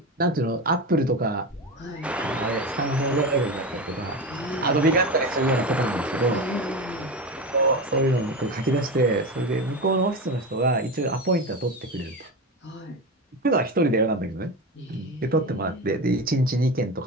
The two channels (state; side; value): normal; both; correlation 0.22